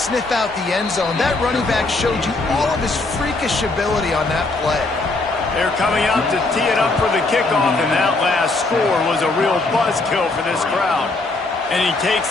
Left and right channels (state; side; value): quieter; right; 3.2 dB